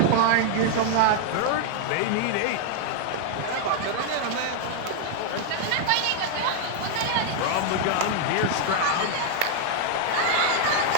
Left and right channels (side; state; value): both; different; correlation 0.00